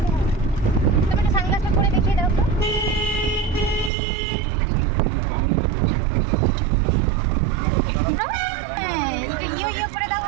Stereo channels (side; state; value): left; drops out; at 3.9 s